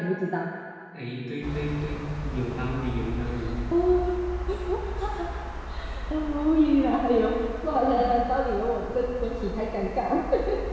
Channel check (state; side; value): identical; both; correlation 1.00